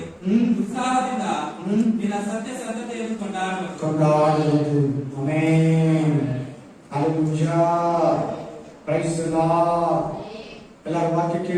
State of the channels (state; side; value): identical; both; correlation 1.00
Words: ಉತ್ಸಾಹದಿಂದ ನಿನ್ನ ಸತ್ಯ ಸಂತತೆಯನ್ನು ಕೊಂಡಾಡುವುದು. Amen. Hallelujah. Praise the lord. ಎಲ್ಲರೂ ವಾಕ್ಯ